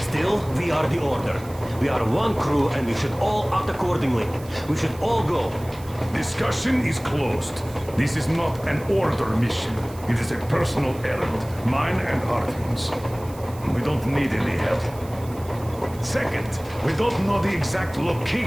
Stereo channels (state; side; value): noise; right; hiss, 21 dB below the sound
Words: we are the Order. We are one crew and we should all act accordingly. We should all go. Discussion is closed. This is not an Order mission. It is a personal errand, mine and Artyom's. We don't need any help. Second, we don't know the exact